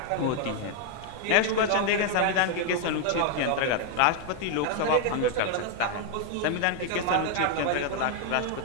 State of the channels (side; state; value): both; different; correlation 0.00